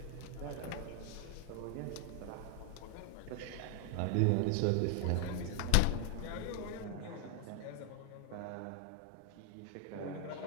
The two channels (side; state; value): both; different; correlation 0.00